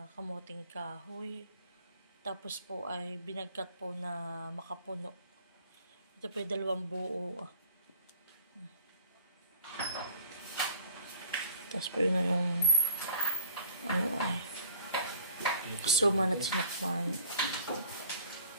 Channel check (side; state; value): both; inverted; correlation -0.49